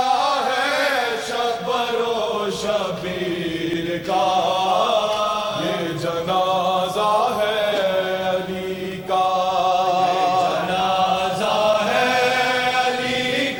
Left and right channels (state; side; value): identical; both; correlation 1.00